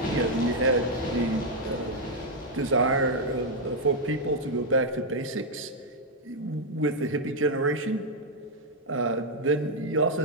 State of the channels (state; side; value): normal; both; correlation -0.01